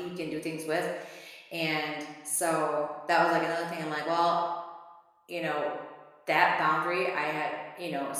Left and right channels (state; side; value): identical; both; correlation 1.00